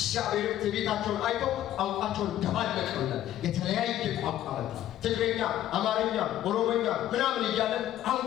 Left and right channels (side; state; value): right; quieter; 12.6 dB